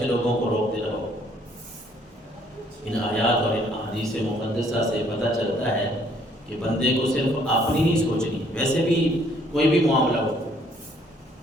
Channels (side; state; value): both; normal; correlation 0.63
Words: لوگوں کو روکتے رہو۔ ان آیات اور ان احادیث مقدسہ سے پتہ چلتا ہے کہ بندے کو صرف اپنی نہیں سوچنی، ویسے بھی کوئی بھی معاملہ ہو،